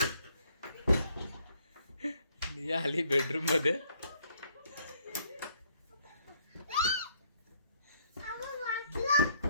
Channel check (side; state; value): both; inverted; correlation -0.67